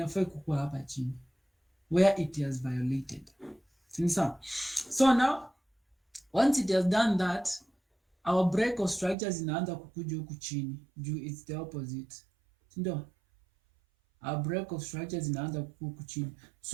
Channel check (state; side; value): drops out; left; at 9.2 s